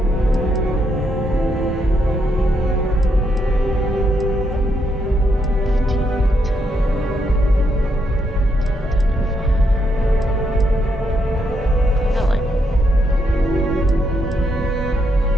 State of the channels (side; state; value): both; normal; correlation 0.78